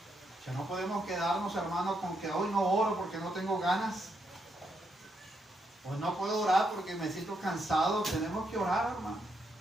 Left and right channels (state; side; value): normal; both; correlation 0.79